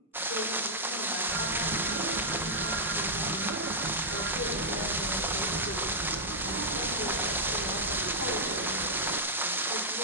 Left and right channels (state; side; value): normal; both; correlation -0.07